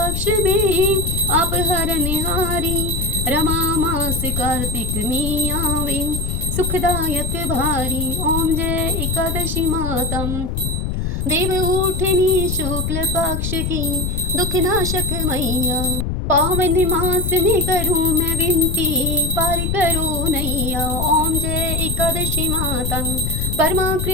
में आप हरनिहारी, रमा मास कार्तिक में आवे सुखदायक भारी ओम जय एकादशी माता। देव उठनी शुक्ल पक्ष की दुख नाशक मैया, पावन मास में करूं मैं विनती पार करो नैया ओम जय एकादशी माता। परमा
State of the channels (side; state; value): left; noise; rumble, 2 dB below the sound